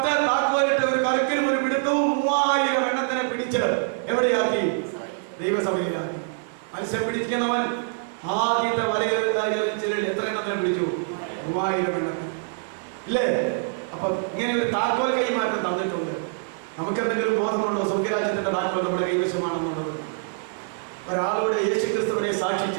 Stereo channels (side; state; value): left; silent; digital silence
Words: താക്കോലിട്ട് ഒരു കലക്കിലും ഒരു പിടുത്തവും 3000 എണ്ണത്തിനെ പിടിച്ച് എവിടെയാക്കി? ദൈവസഭയിലാക്കി. മത്സ്യം പിടിക്കുന്നവൻ ആദ്യത്തെ വലയിൽ എത്ര എണ്ണത്തിനെ പിടിച്ചു? 3000 എണ്ണത്തിന്, ഇല്ലേ? അപ്പൊ ഇങ്ങനെ ഒരു താക്കോൽ കൈമാറ്റം തന്നിട്ടുണ്ട്. നമുക്ക് എന്തെങ്കിലും ബോധമുണ്ടോ സ്വർഗരാജ്യത്തിന്റെ താക്കോൽ നമ്മുടെ കൈവശമാണെന്നുള്ളത്? ഒരാളോട് യേശു ക്രിസ്തുവിനെ